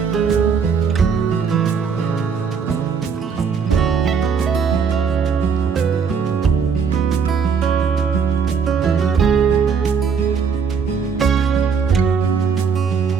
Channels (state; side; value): quieter; left; 6.3 dB